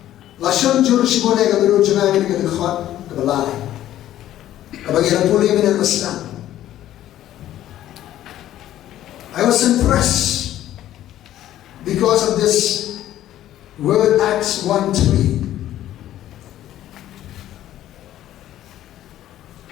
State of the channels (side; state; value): right; quieter; 12.8 dB